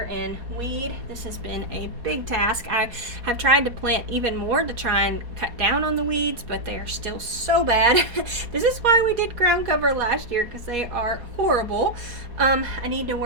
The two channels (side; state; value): left; late; 4.2 ms